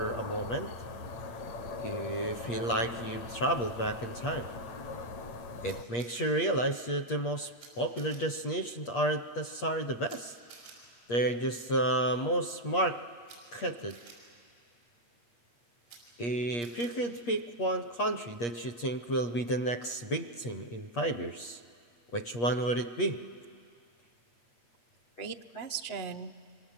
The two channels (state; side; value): late; right; 8.5 ms